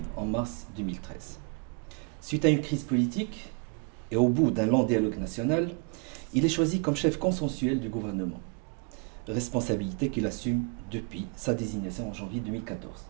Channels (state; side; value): quieter; left; 36.2 dB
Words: en mars 2013. Suite à une crise politique et au bout d'un long dialogue national, il est choisi comme chef consensuel du gouvernement, responsabilité qu'il assume depuis sa désignation en janvier 2014.